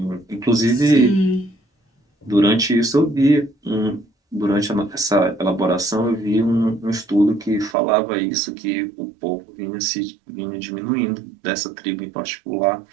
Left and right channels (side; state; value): left; drops out; at 7.8 s